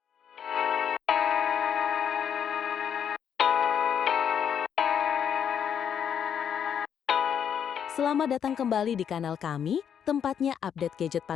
Selamat datang kembali di kanal kami, tempatnya update gadget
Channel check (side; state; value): right; quieter; 8.3 dB